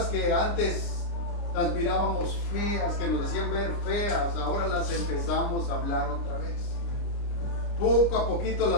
que antes las mirábamos feas, que nos hacían ver feas, ahora las empezamos a hablar otra vez. Poco a poquito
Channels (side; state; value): right; late; 29 ms